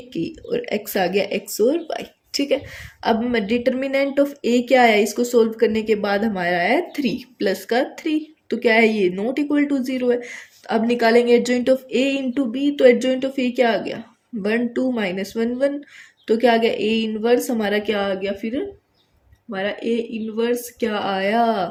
k, और x आ गया x और y। ठीक है, अब डिटर्मिनेंट ऑफ a क्या आया, इसको सोल्व करने के बाद हमारा आया 3 प्लस का 3, तो क्या है ये नॉट इक्वल टू 0 है। अब निकालेंगे adjoint of a into B, तो एडजॉइंट ऑफ a क्या आ गया, 1 2 -1 1, तो क्या आ गया, a इनवर्स हमारा क्या आ गया, फिर हमारा a इनवर्स क्या आया,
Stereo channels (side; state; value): both; identical; correlation 1.00